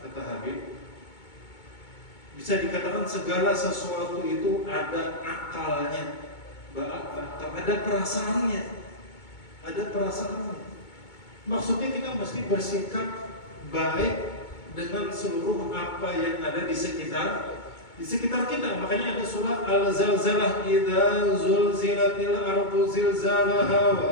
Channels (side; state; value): right; late; 2.2 ms